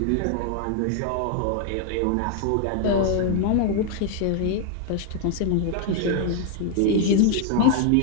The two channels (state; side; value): different; both; correlation 0.00